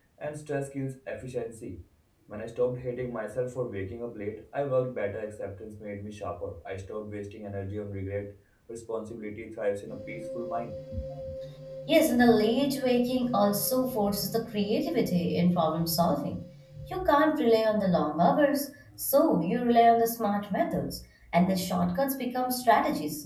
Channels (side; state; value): both; identical; correlation 1.00